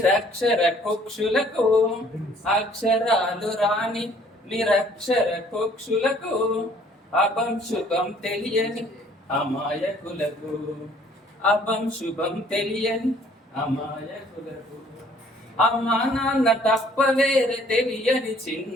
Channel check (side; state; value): both; normal; correlation 0.58